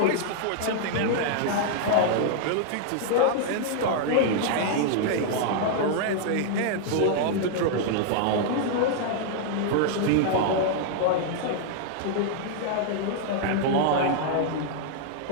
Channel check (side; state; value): both; different; correlation -0.01